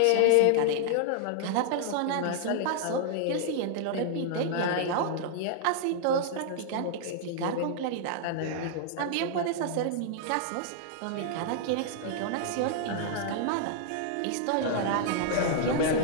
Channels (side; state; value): both; different; correlation -0.01